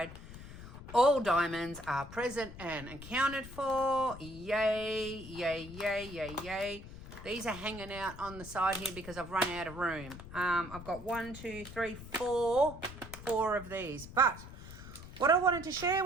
All diamonds are present and accounted for. Yay, yay, yay, yay, yay. These are hanging out on the side here because I've run out of room. I've got 1, 2, 3, 4 of these. But what I wanted to share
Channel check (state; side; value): noise; left; rumble, 14 dB below the sound